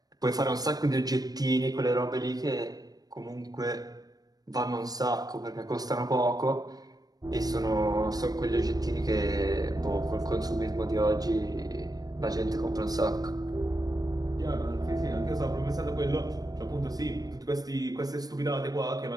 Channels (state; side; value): late; left; 0.19 ms